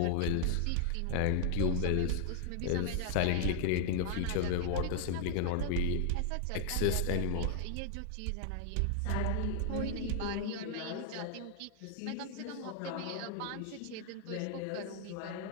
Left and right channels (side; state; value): both; different; correlation 0.00